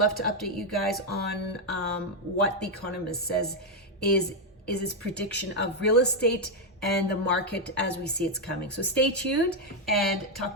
to update you guys on what The Economist says is its prediction of real estate and the market as we see it's coming. So stay tuned and talk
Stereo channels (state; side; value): normal; both; correlation 0.03